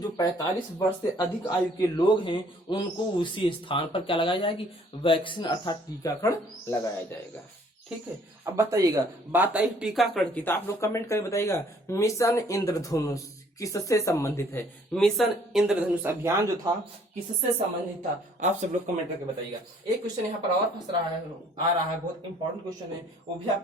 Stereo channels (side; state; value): both; normal; correlation 0.60